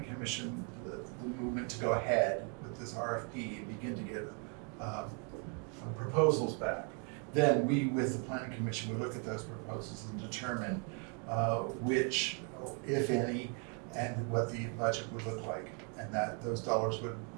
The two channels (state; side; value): quieter; left; 38.3 dB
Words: commission the movement to go ahead with this RFP and begin to get proposals back. Then we, with the planning commission, would look at those proposals and determine which, if any, and what the budget would look like, and that those dollars would